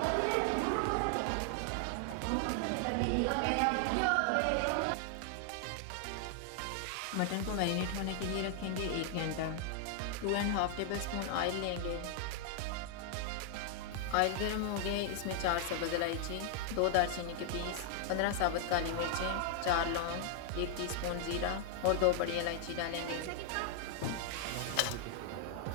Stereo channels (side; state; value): both; different; correlation 0.00